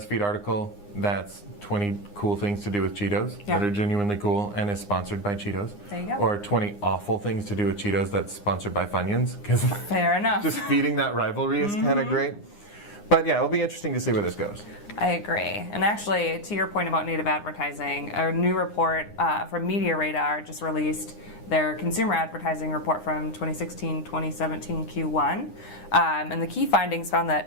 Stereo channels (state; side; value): late; right; 9.8 ms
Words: article that's 20 cool things to do with Cheetos that are genuinely cool and is sponsored by Cheetos. There you go. Or 20 awful things to do with Cheetos that's sponsored by Funyuns. Fair enough. Just feeding that rivalry is kind of great. But yeah, it'll be interesting to see where this goes. I agree. And actually, to your point about native advertising, a new report from Media Radar just released their consumer advertising report from 2016-2017 Q1. And the key findings found